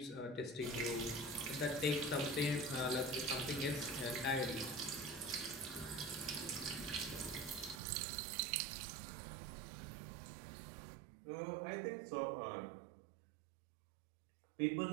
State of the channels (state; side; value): drops out; left; at 7.8 s